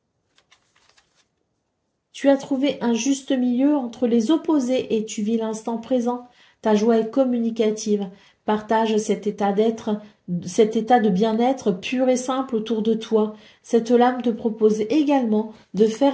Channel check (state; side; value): identical; both; correlation 1.00